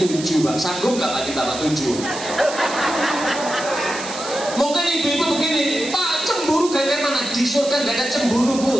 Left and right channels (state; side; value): noise; right; hiss, 10 dB below the sound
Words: Pak, sanggup nggak Pak kita 7? Mungkin ibu-ibu begini, Pak, cemburu kayak mana? Di surga nggak ada cemburu Bu,